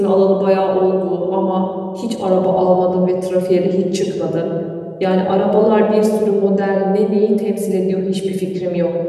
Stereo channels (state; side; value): identical; both; correlation 1.00